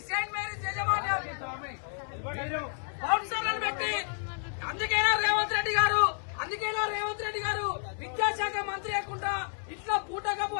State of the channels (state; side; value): silent; right; 57 dB below the other